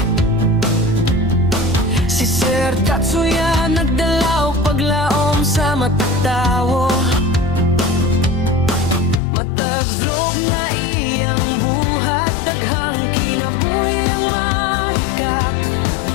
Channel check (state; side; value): drops out; right; at 9.2 s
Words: Si Sir Tatsuya nagdala og paglaom sa matag tawo. Matag vlog nga iyang buhat, daghang kinabuhi ang mahikap.